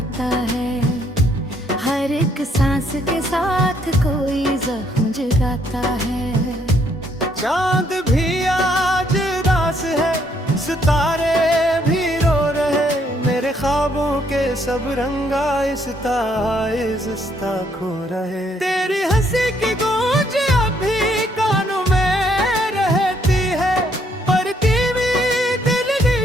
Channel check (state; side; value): normal; both; correlation 0.70